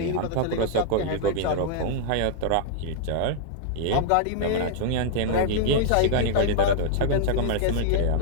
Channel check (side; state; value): both; different; correlation -0.01